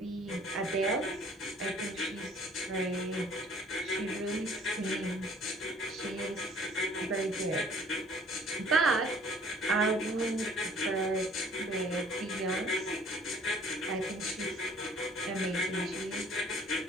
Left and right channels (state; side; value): normal; both; correlation 0.55